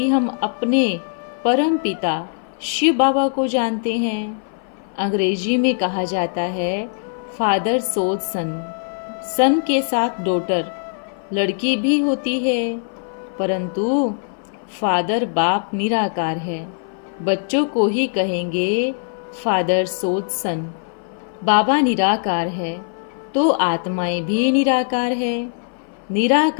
हम अपने परम पिता शिव बाबा को जानते हैं। अंग्रेजी में कहा जाता है फादर सोज सन। सन के साथ डॉटर लड़की भी होती है, परंतु फादर बाप निराकार है। बच्चों को ही कहेंगे फादर सोज सन। बाबा निराकार है तो आत्माएं भी निराकार है।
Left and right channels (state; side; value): silent; right; 58 dB below the other